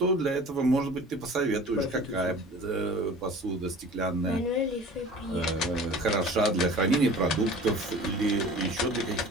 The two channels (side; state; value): both; normal; correlation 0.43